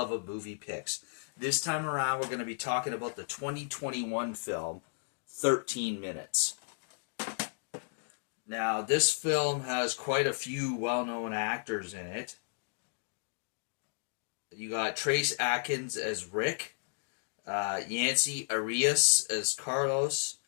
of Movie Picks. This time around, we're going to be talking about the 2021 film, 13 Minutes. Now, this film has quite a few well-known actors in it. You got Trace Atkins as Rick, Yancey Arias as Carlos,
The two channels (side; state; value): right; silent; digital silence